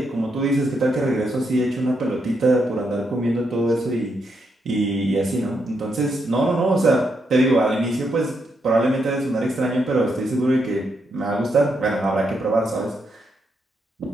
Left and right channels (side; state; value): both; normal; correlation 0.79